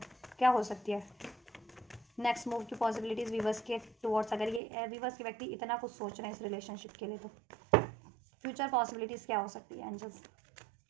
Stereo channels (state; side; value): drops out; left; at 4.6 s